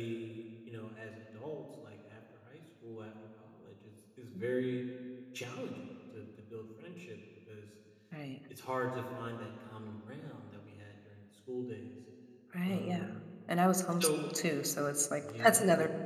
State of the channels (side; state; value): both; identical; correlation 1.00